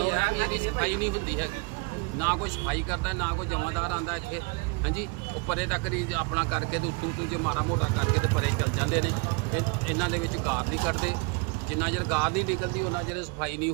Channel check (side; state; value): left; quieter; 30.1 dB